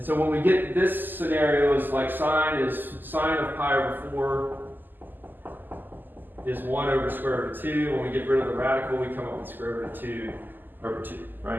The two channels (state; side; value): late; left; 0.089 ms